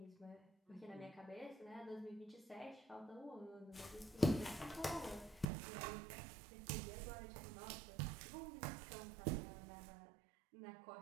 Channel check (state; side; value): drops out; left; at 5.5 s